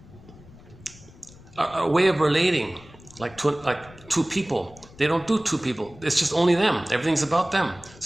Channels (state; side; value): noise; left; rumble, 22 dB below the sound